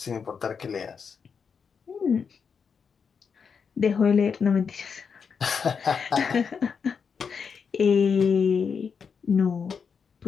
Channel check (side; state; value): right; quieter; 6.1 dB